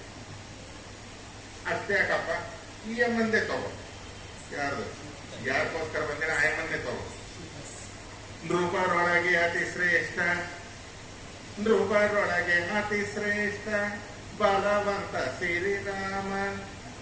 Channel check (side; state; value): both; identical; correlation 1.00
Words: ಅಷ್ಟೇ ಯಾಕಪ್ಪ, ಈ ಅಮ್ಮಂದೇ ತಗೋ. ಯಾರಿಗೋಸ್ಕರ ಬಂದಿನ ಆ ಅಮ್ಮಂದೇ ತಗೋ. ನೃಪರೊಳಗೆ ಅತಿ ಶ್ರೇಷ್ಠ, ನೃಪರೊಳಗೆ ಅತಿ ಶ್ರೇಷ್ಠ ಬಲವಂತ ಶ್ರೀರಾಮ